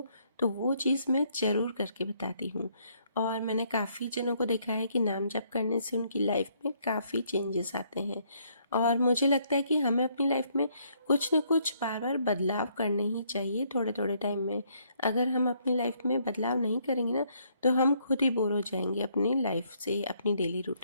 तो वो चीज़ मैं ज़रूर करके बताती हूँ। और मैंने काफ़ी जनों को देखा है कि नाम जप करने से उनकी लाइफ में काफ़ी चेंजेस आते हैं और मुझे लगता है कि हमें अपनी लाइफ में कुछ न कुछ बार बार बदलाव करने ही चाहिए थोड़े थोड़े टाइम में। अगर हम अपनी लाइफ में बदलाव नहीं करेंगे ना तो हम खुद ही बोर हो जाएंगे अपनी लाइफ से, अपनी डेली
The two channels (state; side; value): inverted; both; correlation -0.69